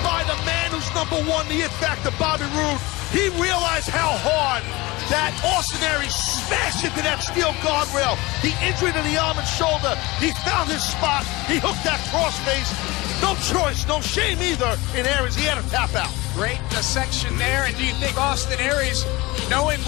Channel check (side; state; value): right; quieter; 22.1 dB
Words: by the man who's #1, the It Factor, Bobby Roode. He realized how hard that Austin Aries smashed into that steel guardrail. The injury to the arm and shoulder. He found his spot. He hooked that crossface. No choice, no shame either in Aries. He had to tap out. Great dissection there. And do you think Austin Aries, knowing